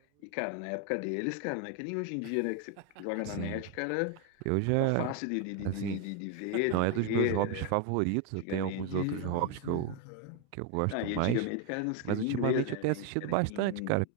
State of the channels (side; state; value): both; different; correlation 0.01